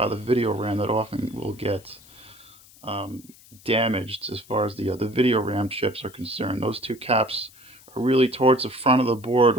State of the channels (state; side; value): noise; left; hiss, 24 dB below the sound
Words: the video RAM that often will get damaged as far as the video RAM chips are concerned. Those two caps are really towards the front of the board